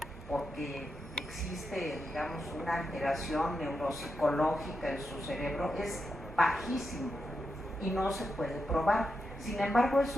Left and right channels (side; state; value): both; normal; correlation 0.86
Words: porque existe, digamos, una alteración neuropsicológica en su cerebro es bajísimo y no se puede probar. Sin embargo, es